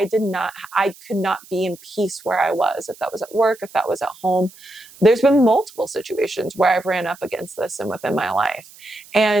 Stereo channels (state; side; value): noise; right; hiss, 22 dB below the sound